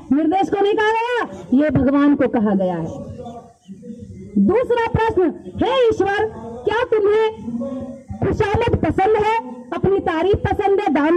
निर्देश को नहीं कहा गया, ये भगवान को कहा गया है। दूसरा प्रश्न, हे ईश्वर, क्या तुम्हें खुशामद पसंद है, अपनी तारीफ पसंद है, दान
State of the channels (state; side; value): identical; both; correlation 1.00